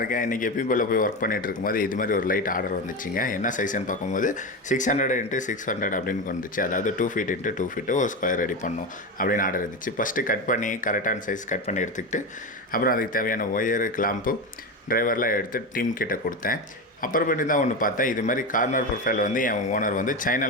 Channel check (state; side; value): normal; both; correlation 0.19